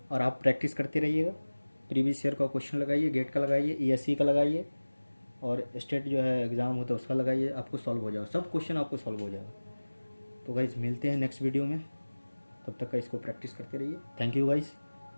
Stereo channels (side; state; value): both; inverted; correlation -1.00